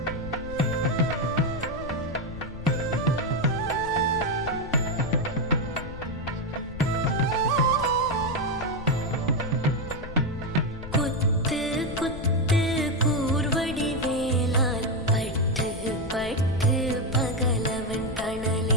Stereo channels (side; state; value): left; noise; rumble, 12 dB below the sound